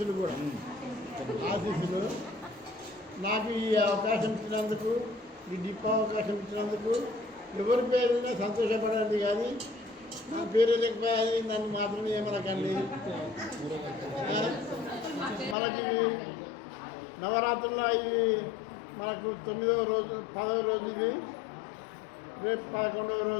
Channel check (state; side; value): drops out; right; at 15.6 s